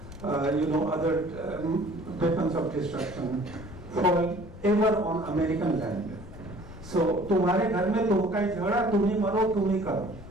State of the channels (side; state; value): left; noise; rumble, 15 dB below the sound